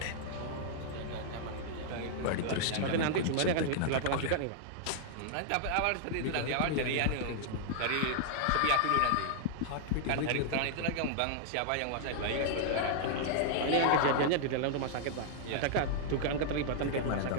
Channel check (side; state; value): both; different; correlation -0.01